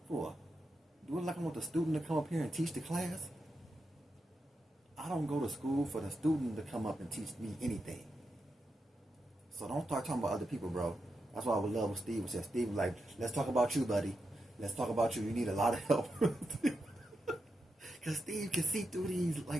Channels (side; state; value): both; normal; correlation 0.87